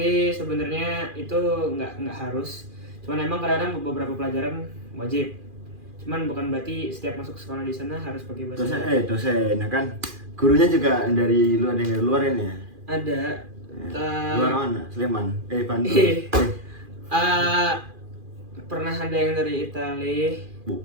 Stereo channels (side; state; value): left; late; 2.4 ms